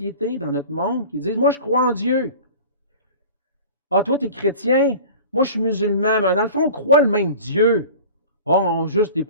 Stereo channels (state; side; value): inverted; both; correlation -0.39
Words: dans notre monde, qui disent « Moi, je crois en Dieu ». « Ah, toi, tu es chrétien, moi, je suis musulman, mais dans le fond, on croit le même Dieu. Oh, on a juste des